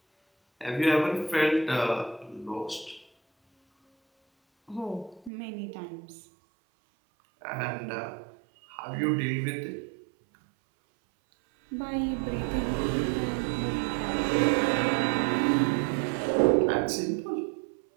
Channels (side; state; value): left; drops out; at 5.3 s